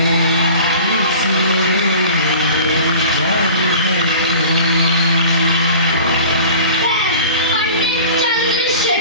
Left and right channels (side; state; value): both; inverted; correlation -0.41